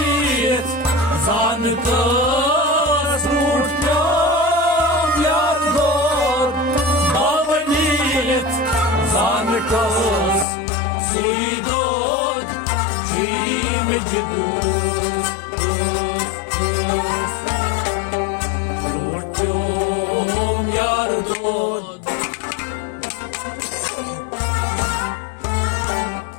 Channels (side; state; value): right; drops out; at 10.5 s